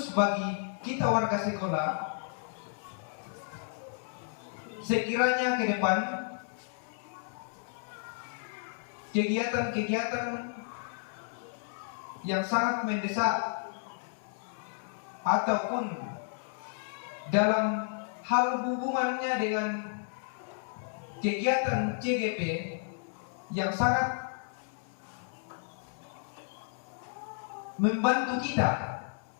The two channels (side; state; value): right; silent; 56 dB below the other